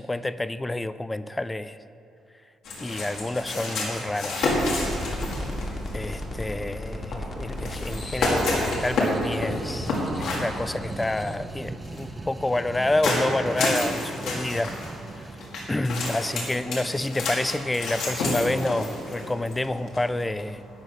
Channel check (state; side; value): normal; both; correlation 0.87